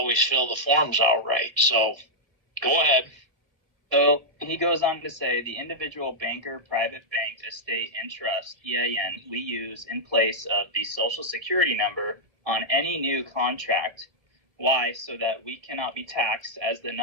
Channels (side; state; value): left; late; 1.7 ms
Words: fill the forms out right. So go ahead. So he goes on to say, the individual banker, private bank, estate, and trust, EIN, we use in place of the Social Security number on any new contract. Why? So that we cannot be taxed as the